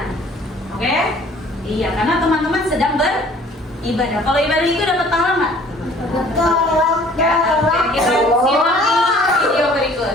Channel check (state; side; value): normal; both; correlation 0.53